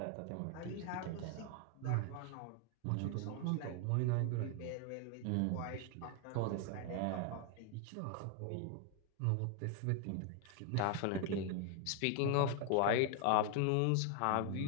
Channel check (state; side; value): different; both; correlation 0.00